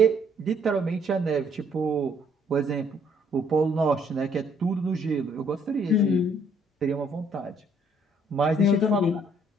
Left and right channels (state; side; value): normal; both; correlation 0.65